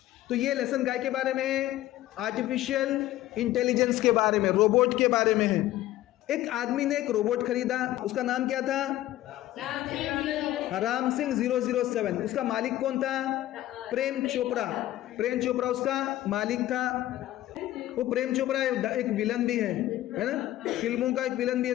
तो ये लेसन गाय के बारे में, आर्टिफिशियल इंटेलिजेंस के बारे में, रोबोट के बारे में है। एक आदमी ने एक रोबोट खरीदा, उसका नाम क्या था, राम सिंह 007। उसका मालिक कौन था, प्रेम चोपड़ा। प्रेम चोपड़ा उसका मालिक था। वो प्रेम चोपड़ा एक विलन भी है ना, फिल्मों का एक विलन भी है।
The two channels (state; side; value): quieter; right; 14.7 dB